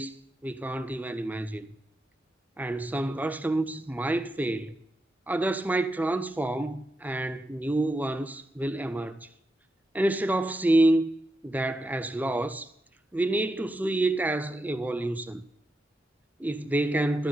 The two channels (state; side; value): normal; both; correlation 0.86